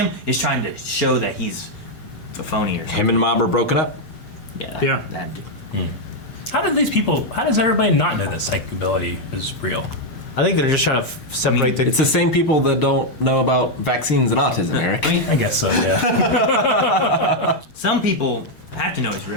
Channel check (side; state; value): right; late; 6.5 ms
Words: is trying to show that he's a phony or something. Him and Mob are broken up? Yeah, that dude. How does everybody not know that psychic ability is real? I think they're just trying to separate the... It's the same people that don't know about vaccines and autism, Eric. I guess so, yeah. Some people have to know it's